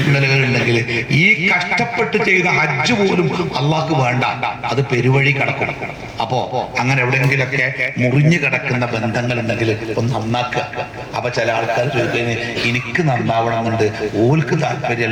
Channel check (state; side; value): identical; both; correlation 1.00